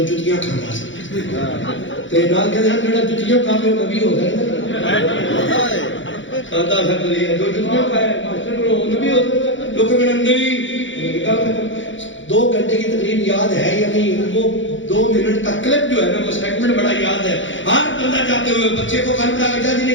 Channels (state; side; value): late; right; 0.55 ms